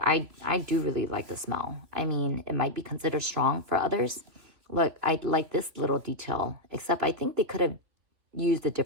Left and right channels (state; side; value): late; left; 3.2 ms